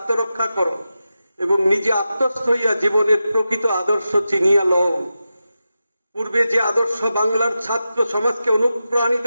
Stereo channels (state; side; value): inverted; both; correlation -0.91